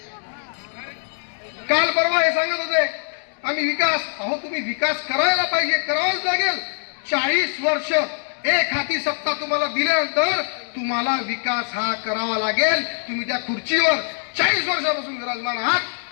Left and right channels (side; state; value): right; silent; digital silence